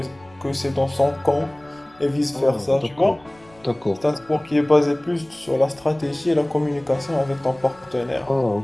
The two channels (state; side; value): noise; left; rumble, 29 dB below the sound